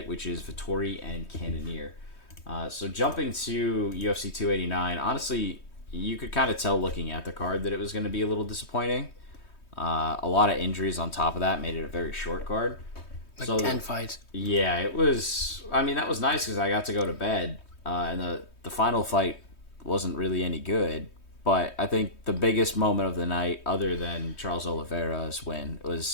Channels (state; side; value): late; right; 3.2 ms